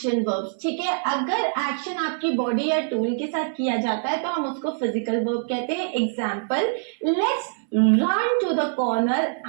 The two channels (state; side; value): silent; left; 62 dB below the other